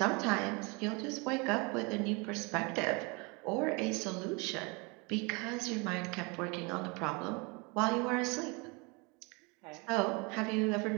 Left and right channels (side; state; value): left; quieter; 29.5 dB